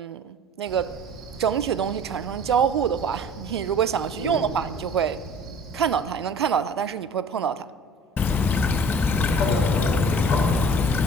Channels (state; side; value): normal; both; correlation 0.46